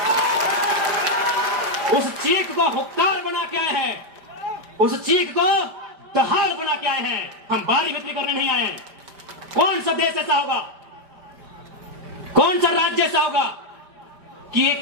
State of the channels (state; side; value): late; left; 5.0 ms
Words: उस चीख को हुक्कार बना के आए हैं, उस चीख को दहाड़ बना के आए हैं। हम बाहरी बिक्री करने नहीं आए हैं। कौन सा देश ऐसा होगा, कौन सा राज्य ऐसा होगा कि एक